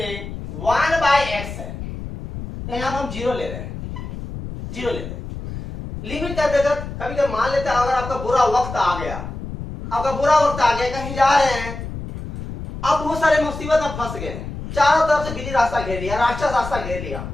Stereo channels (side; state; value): left; noise; rumble, 9 dB below the sound